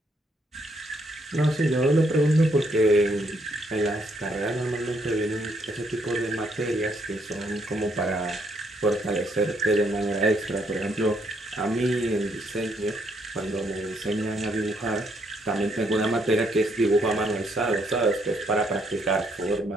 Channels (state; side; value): normal; both; correlation 0.72